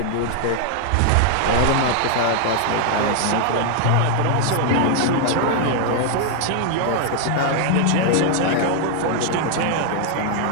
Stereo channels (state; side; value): different; both; correlation 0.00